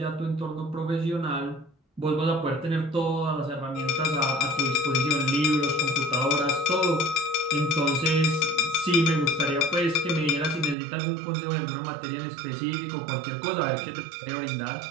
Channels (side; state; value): left; drops out; at 10.8 s